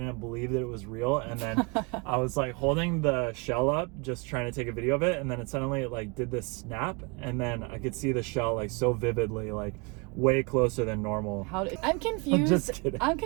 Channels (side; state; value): left; quieter; 30.0 dB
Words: believe that it was real, and then I was like holding the shell up just trying to take a video of it, and then it suddenly like did this snap, and then I could see the shell like so vividly, like way closer than normal. I'm confused. I'm just kidding. I'm